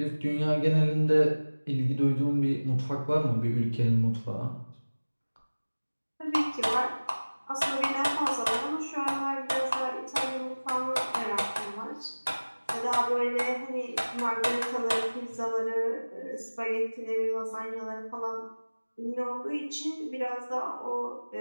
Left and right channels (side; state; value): both; inverted; correlation -1.00